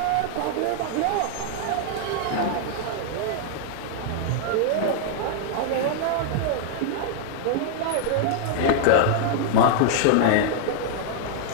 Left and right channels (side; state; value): both; different; correlation -0.01